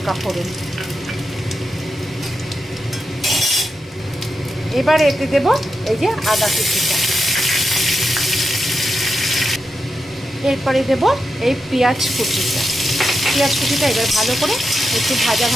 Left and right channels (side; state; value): both; normal; correlation 0.87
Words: ফোড়ন। এবার এতে দেব এই যে আদা কুচিটা, এরপরে দেব এই পেঁয়াজ কুচিটা। এবার ভালো করে একটু ভাজা